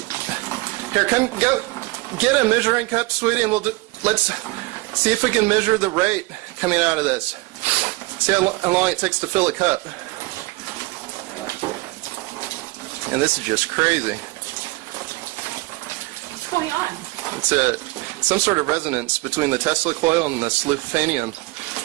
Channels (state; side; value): quieter; left; 22.2 dB